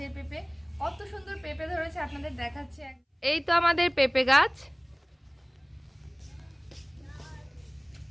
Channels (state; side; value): identical; both; correlation 1.00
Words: পেঁপে। কত সুন্দর পেঁপে ধরেছে আপনাদের দেখাচ্ছে। এই তো আমাদের পেঁপে গাছ,